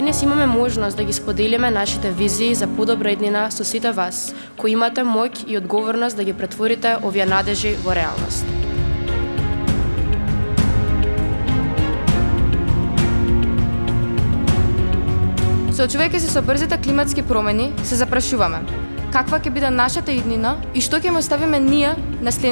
денес имаме можност да ги споделиме нашите визии за подобра иднина со сите вас, кои имате моќ и одговорност да ги претворите овие надежи во реалност. Соочувајќи се со брзите климатски промени, се запрашуваме каква ќе биде нашата иднина и што ќе му оставиме ние на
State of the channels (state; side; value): inverted; both; correlation -1.00